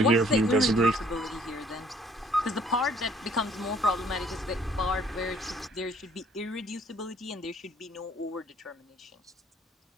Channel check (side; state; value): both; normal; correlation 0.60